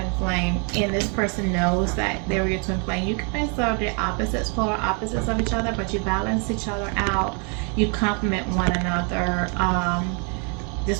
flame, and this person knows that they were your twin flame. You guys are the opposites, polar opposites of each other, but you balance each other out. You complement one another.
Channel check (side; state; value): left; quieter; 37.1 dB